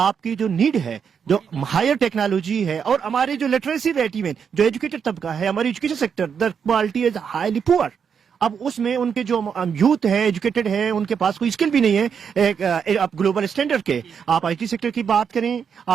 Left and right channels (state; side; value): quieter; left; 7.0 dB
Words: जो नीड है, जो हायर टेक्नोलॉजी है, और हमारी जो लिटरेसी रेट, इवन जो एजुकेटेड तबका है, हमारी education sector the quality is highly poor. अब उसमें उनके जो यूथ है, एजुकेटेड है, उनके पास कोई स्किल भी नहीं है आप ग्लोबल स्टैंडर्ड के। आप आईटी सेक्टर की बात करें,